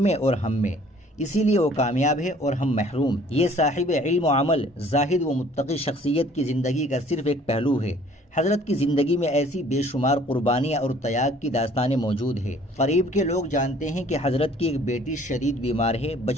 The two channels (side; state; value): both; normal; correlation 0.55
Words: میں اور ہم میں، اسی لیے وہ کامیاب ہے اور ہم محروم۔ یہ صاحب علم و عمل، زاہد و متقی شخصیت کی زندگی کا صرف ایک پہلو ہے۔ حضرت کی زندگی میں ایسی بے شمار قربانیاں اور تیاگ کی داستانیں موجود ہیں۔ قریب کے لوگ جانتے ہیں کہ حضرت کی ایک بیٹی شدید بیمار ہے،